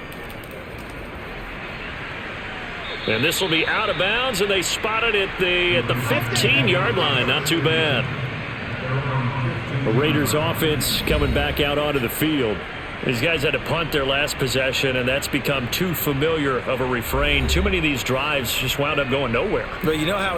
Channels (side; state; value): both; identical; correlation 1.00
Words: And this will be out of bounds, and they spot it at the 15-yard line. Not too bad. The Raiders offense coming back out onto the field. These guys had to punt their last possession, and that's become too familiar of a refrain. Too many of these drives just wound up going nowhere. But you know how